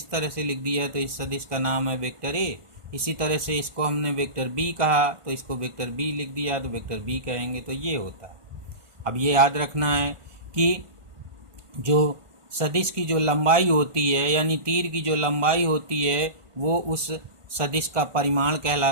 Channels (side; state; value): left; late; 1.5 ms